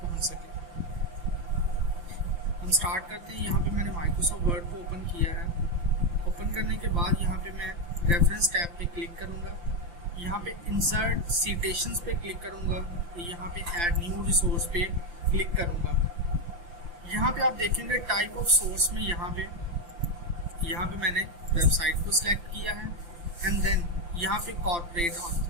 पहुंच सके। हम स्टार्ट करते हैं। यहाँ पे मैंने माइक्रोसॉफ्ट वर्ड को ओपन किया है। ओपन करने के बाद यहाँ पे मैं रेफरेंस टैब पे क्लिक करूँगा। यहाँ पे इंसर्ट सिटेशंस पे क्लिक करूँगा। यहाँ पे ऐड न्यू रिसोर्स पे क्लिक करूँगा। यहाँ पे आप देखेंगे टाइप ऑफ सोर्स में यहाँ पे मैंने वेबसाइट को सिलेक्ट किया है एंड देन यहाँ पे कॉर्पोरेट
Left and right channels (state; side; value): late; left; 5.8 ms